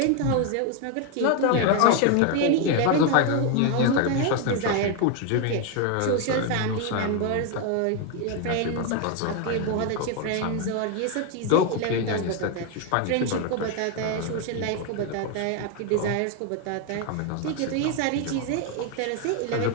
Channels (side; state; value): both; different; correlation 0.01